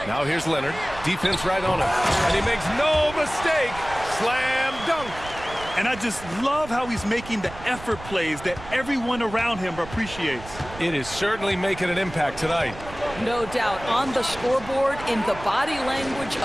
Now here's Leonard. Defense right on him. And he makes no mistake. Slam dunk. And I just love how he's making the effort plays that everyone around him appreciates. It is certainly making an impact tonight. No doubt. On the scoreboard, in the body language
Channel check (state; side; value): noise; right; rumble, 15 dB below the sound